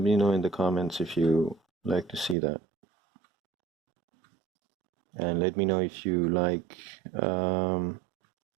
in the comments if you like to see that, and let me know if you like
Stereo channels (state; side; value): drops out; left; at 2.4 s